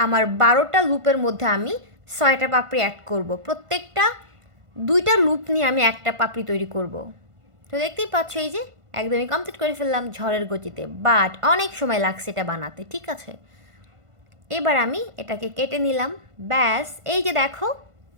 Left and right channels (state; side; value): late; left; 1.5 ms